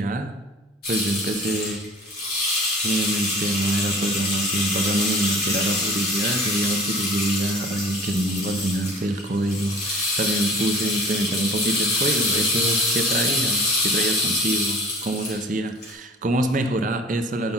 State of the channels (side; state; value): both; normal; correlation 0.46